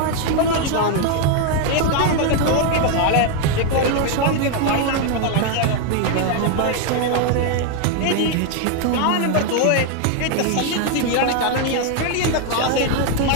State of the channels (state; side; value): different; both; correlation 0.01